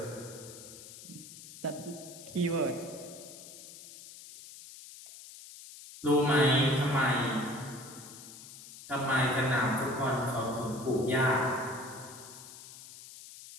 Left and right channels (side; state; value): left; noise; hiss, 16 dB below the sound